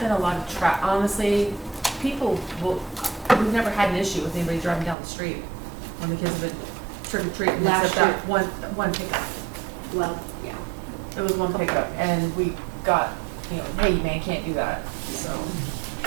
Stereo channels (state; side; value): drops out; left; at 5.0 s